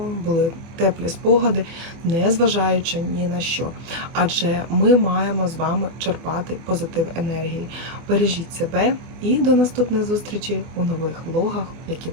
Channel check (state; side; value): late; left; 24 ms